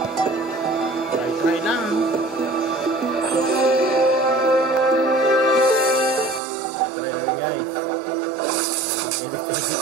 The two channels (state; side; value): drops out; left; at 6.4 s